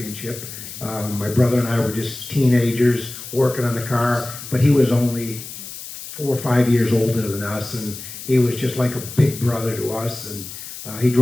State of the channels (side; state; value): left; noise; hiss, 11 dB below the sound